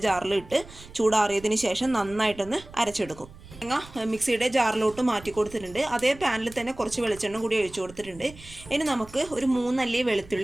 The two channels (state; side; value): noise; right; rumble, 19 dB below the sound